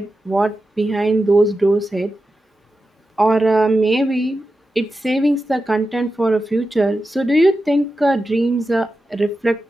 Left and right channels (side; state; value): both; normal; correlation 0.91